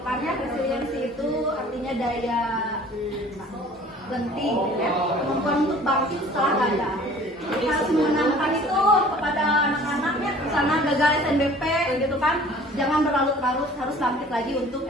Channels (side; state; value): both; normal; correlation 0.49